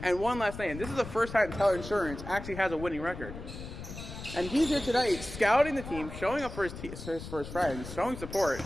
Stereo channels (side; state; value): left; noise; rumble, 11 dB below the sound